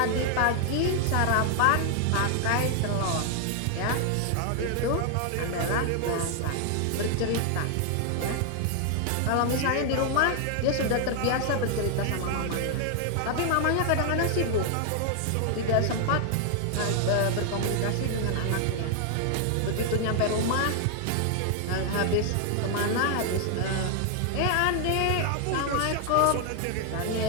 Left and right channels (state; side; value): different; both; correlation 0.00